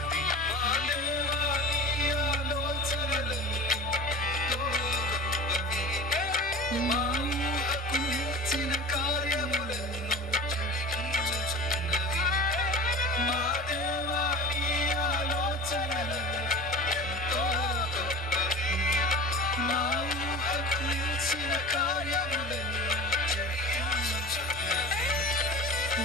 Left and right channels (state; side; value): normal; both; correlation 0.36